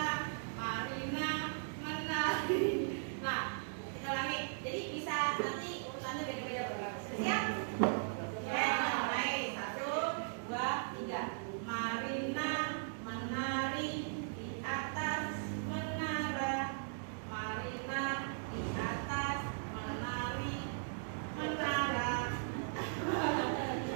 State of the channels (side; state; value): left; silent; digital silence